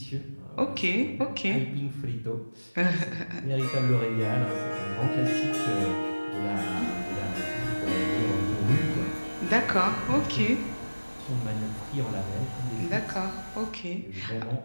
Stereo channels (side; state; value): both; inverted; correlation -1.00